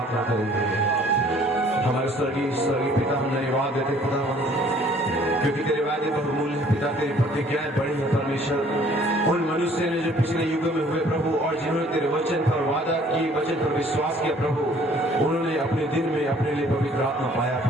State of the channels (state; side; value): normal; both; correlation 0.57